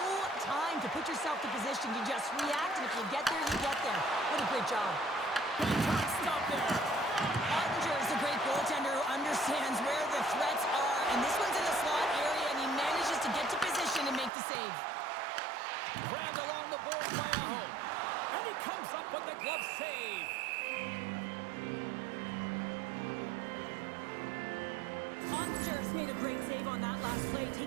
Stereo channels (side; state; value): left; drops out; at 14.3 s